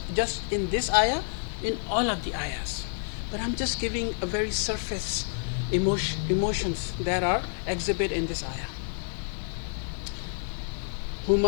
in this ayah, in all of the ayahs. But I'm just giving a very surface emotions that are exhibited in this ayah.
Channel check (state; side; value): silent; right; digital silence